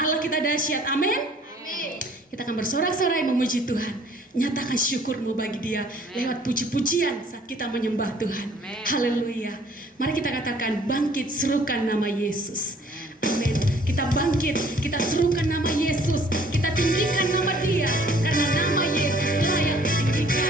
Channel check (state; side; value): normal; both; correlation 0.57